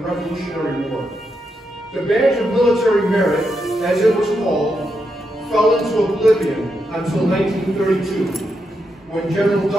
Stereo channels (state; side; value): normal; both; correlation 0.83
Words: War. The badge of military merit, as it was called, fell into oblivion until 1932, when General